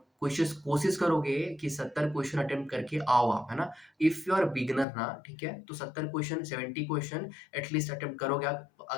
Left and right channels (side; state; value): right; drops out; at 4.9 s